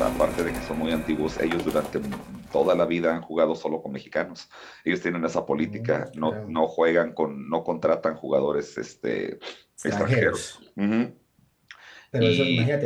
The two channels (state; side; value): identical; both; correlation 1.00